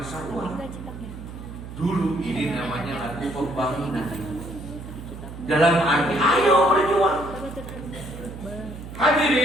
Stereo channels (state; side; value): noise; right; hum, 12 dB below the sound